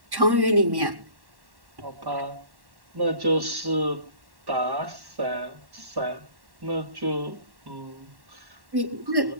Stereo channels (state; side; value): late; left; 1.1 ms